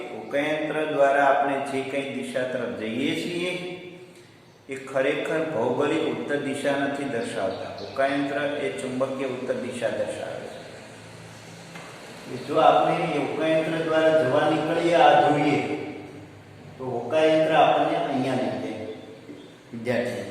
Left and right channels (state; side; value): identical; both; correlation 1.00